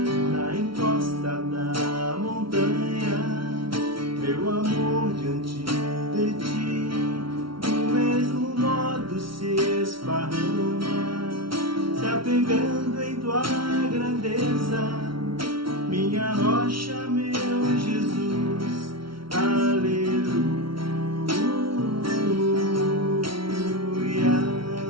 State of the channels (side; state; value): left; late; 0.74 ms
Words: na encosta da montanha, meu amor diante de ti, do mesmo modo se esparrama, se apegando em tua grandeza, minha rocha, meu Jesus. Aleluia.